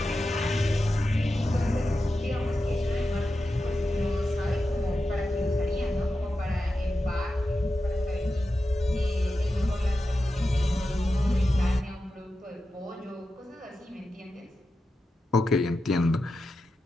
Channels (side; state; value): both; normal; correlation 0.91